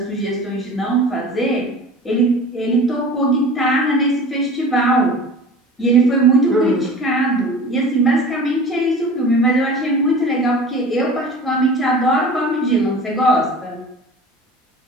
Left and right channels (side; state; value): both; normal; correlation 0.39